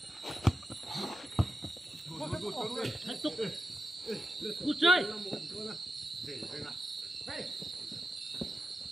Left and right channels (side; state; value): both; normal; correlation 0.90